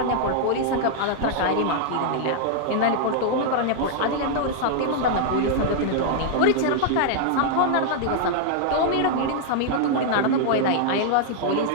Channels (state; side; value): different; both; correlation -0.01